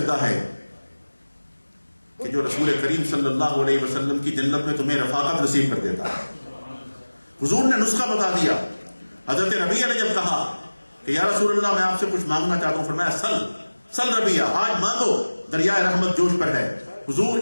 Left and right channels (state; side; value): inverted; both; correlation -1.00